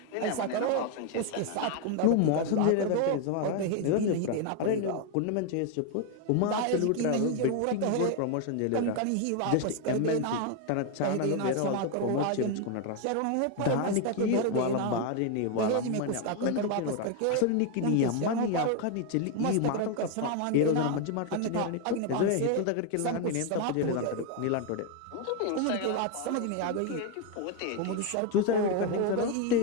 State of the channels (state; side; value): different; both; correlation 0.01